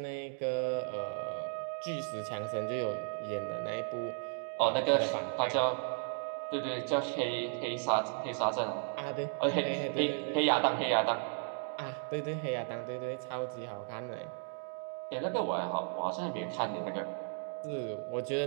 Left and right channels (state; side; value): silent; left; 54 dB below the other